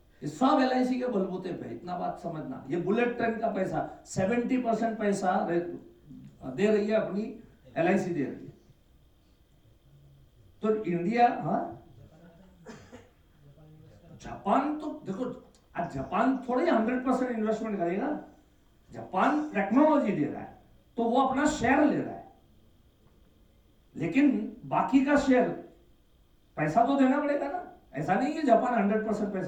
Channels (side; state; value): both; identical; correlation 1.00